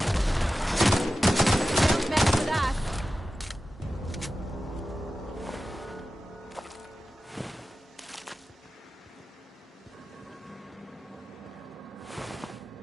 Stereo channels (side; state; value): both; normal; correlation 0.94